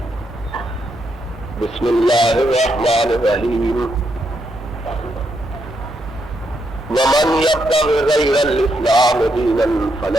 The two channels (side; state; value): both; normal; correlation 0.79